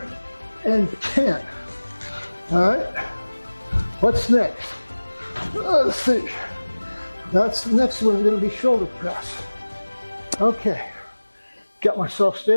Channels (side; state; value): both; inverted; correlation -1.00